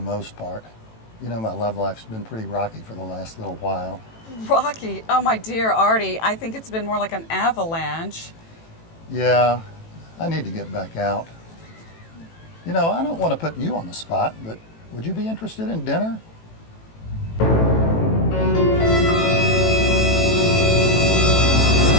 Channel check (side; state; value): right; late; 18 ms